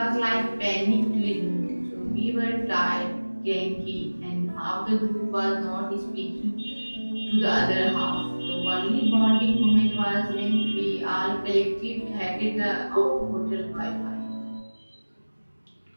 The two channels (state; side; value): inverted; both; correlation -1.00